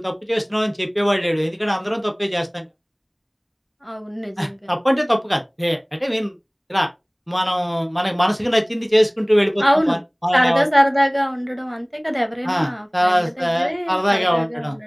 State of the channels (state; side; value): identical; both; correlation 1.00